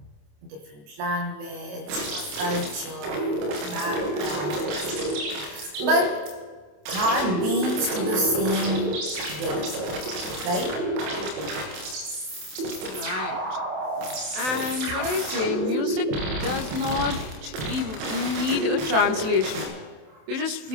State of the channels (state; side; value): late; left; 27 ms